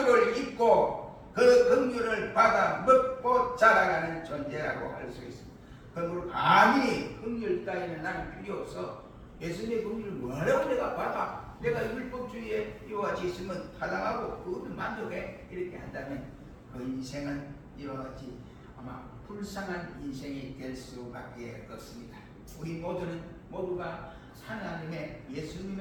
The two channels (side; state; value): both; identical; correlation 1.00